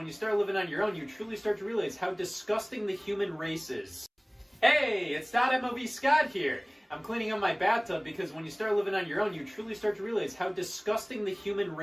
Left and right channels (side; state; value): both; identical; correlation 1.00